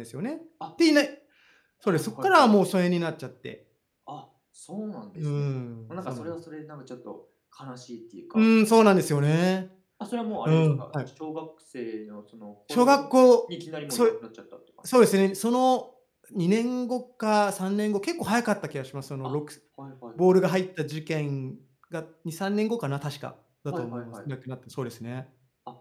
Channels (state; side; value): identical; both; correlation 1.00